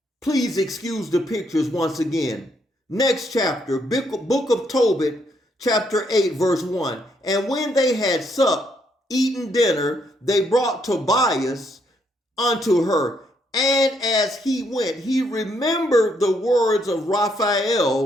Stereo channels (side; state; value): both; normal; correlation 0.73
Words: please excuse the pictures once again. Next chapter, book of Tobit, chapter 8, verse 1. And when they had supped, eaten dinner, they brought Tobias unto her. And as he went, he remembered the words of